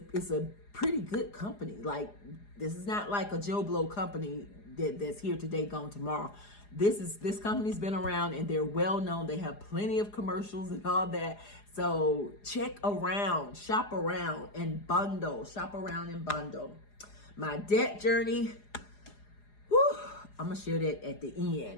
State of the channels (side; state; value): right; late; 4.9 ms